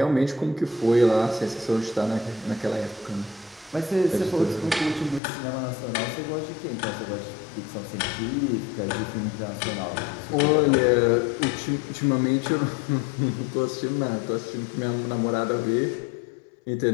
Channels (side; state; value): right; drops out; at 5.2 s